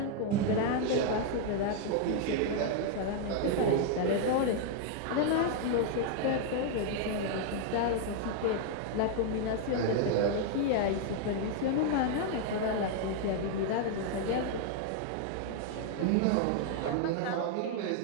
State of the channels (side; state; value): both; different; correlation 0.00